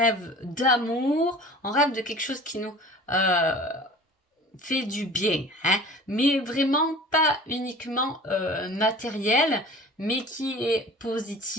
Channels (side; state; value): both; normal; correlation 0.42